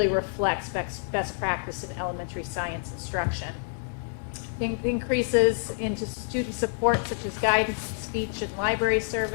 reflects best practice in elementary science instruction. Increases into student support such as guidance, speech, and library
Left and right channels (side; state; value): right; silent; digital silence